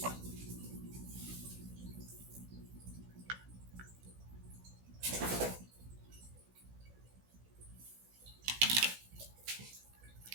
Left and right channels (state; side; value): late; left; 16 ms